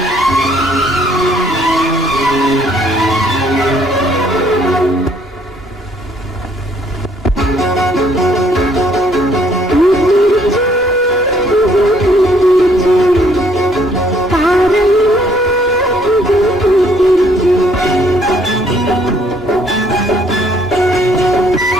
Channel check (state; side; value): normal; both; correlation 0.64